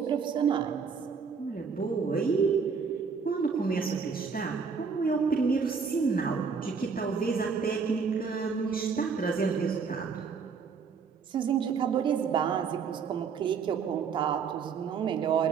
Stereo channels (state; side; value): quieter; left; 5.7 dB